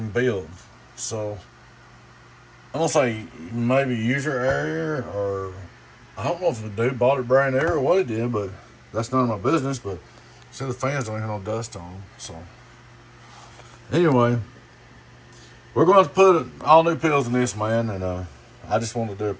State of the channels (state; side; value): identical; both; correlation 1.00